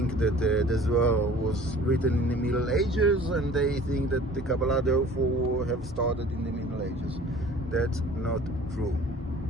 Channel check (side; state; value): both; normal; correlation 0.48